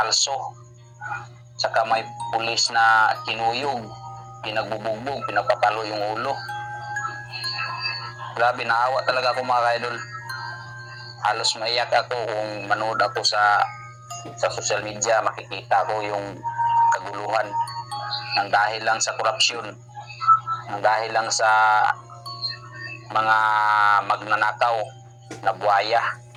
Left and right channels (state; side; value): identical; both; correlation 1.00